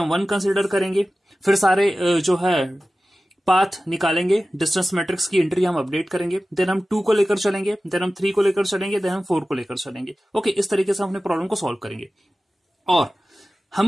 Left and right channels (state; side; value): normal; both; correlation 0.95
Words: 1 कंसिडर करेंगे, फिर सारे जो है पाथ निकालेंगे, डिस्टेंस मैट्रिक्स की एंट्री हम अपडेट करेंगे, देन हम 2 को लेकर चलेंगे, देन हम 3 को लेकर चलेंगे, देन हम 4 को लेकर चलेंगे. ओके, इस तरीके से हम अपने प्रॉब्लम को सॉल्व करेंगे. और